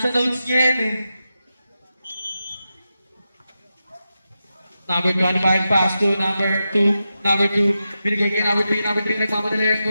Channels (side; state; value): both; inverted; correlation -0.90